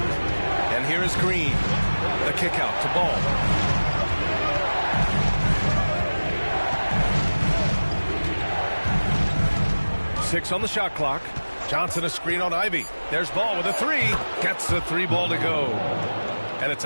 And here is Green. The kick out to Ball. Six on the shot clock. Johnson a screen on Ivy. There's Ball with a 3. Gets the 3 ball to go. And it's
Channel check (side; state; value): both; inverted; correlation -1.00